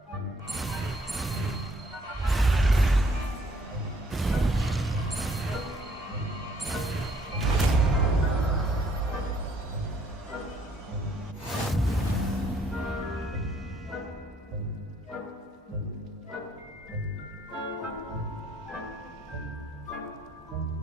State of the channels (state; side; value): normal; both; correlation 0.64